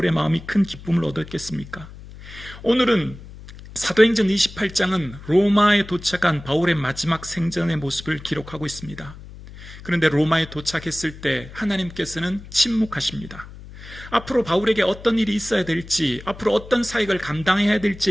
마음이 큰 기쁨을 얻었겠습니까? 오늘은 사도행전 28장은 로마에 도착한 바울의 마지막 생전의 모습을 기록하고 있습니다. 그런데 로마에 도착했을 때 하나님께서는 침묵하십니다. 앞으로 바울에게 어떤 일이 있어야 될지, 앞으로 어떤 사역을 감당해야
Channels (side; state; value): left; noise; hum, 16 dB below the sound